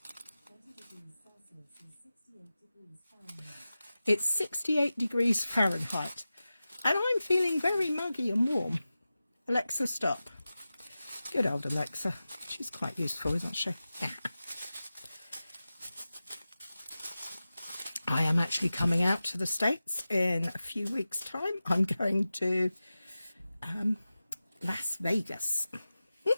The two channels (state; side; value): inverted; both; correlation -0.95